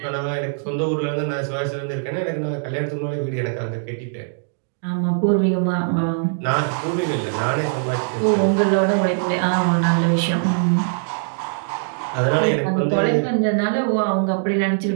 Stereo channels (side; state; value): left; silent; digital silence